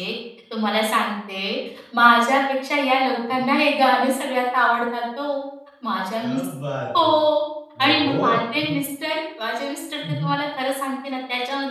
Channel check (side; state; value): both; identical; correlation 1.00